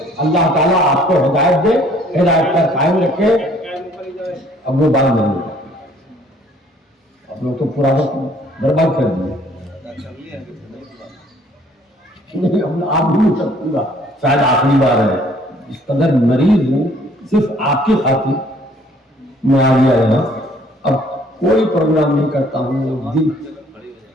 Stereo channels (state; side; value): normal; both; correlation 0.59